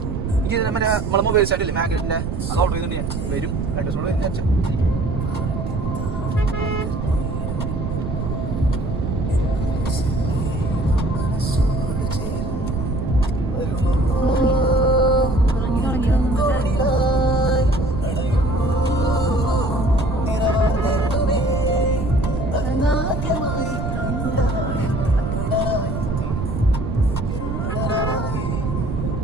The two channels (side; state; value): right; noise; rumble, 3 dB below the sound